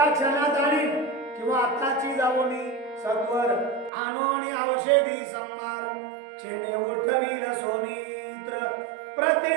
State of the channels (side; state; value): left; drops out; at 3.9 s